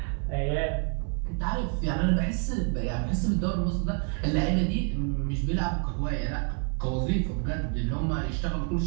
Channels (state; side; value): quieter; left; 39.9 dB